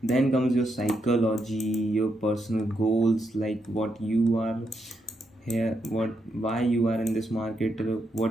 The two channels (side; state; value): both; normal; correlation 0.81